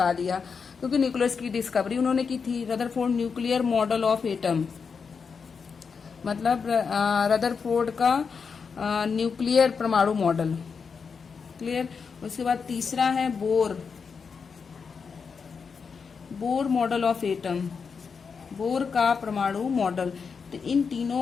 दिया, क्योंकि न्यूक्लियस की डिस्कवरी उन्होंने की थी। Rutherford nuclear model of atom, मतलब रदरफोर्ड का न्यूक्लियर परमाणु मॉडल। क्लियर। उसके बाद तीसरा है Bohr model of atom, bore का परमाणु मॉडल। तो इन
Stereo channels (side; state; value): right; quieter; 5.7 dB